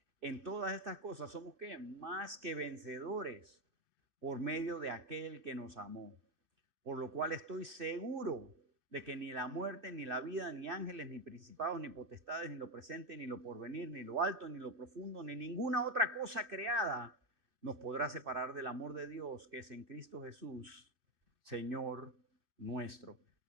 En todas estas cosas somos ¿qué? Más que vencedores por medio de aquel que nos amó. Por lo cual estoy seguro de que ni la muerte, ni la vida, ni ángeles, ni principados, ni potestades, ni lo presente, ni lo porvenir, ni lo alto, ni lo profundo, ni ninguna otra cosa creada nos podrá separar del amor de Dios que es en Cristo Jesús, Señor nuestro.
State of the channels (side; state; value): left; late; 2.6 ms